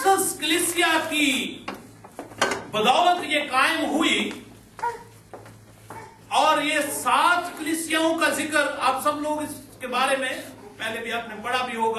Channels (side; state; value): both; identical; correlation 1.00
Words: कलीसिया की बदौलत ये कायम हुई और ये 7 कलीसियाओं का जिक्र आप सब लोग इसके बारे में पहले भी आपने पढ़ा भी